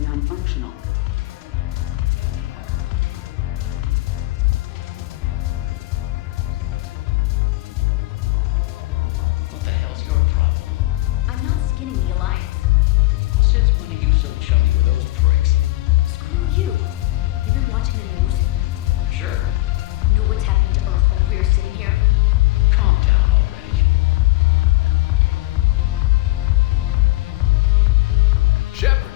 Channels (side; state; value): right; quieter; 19.1 dB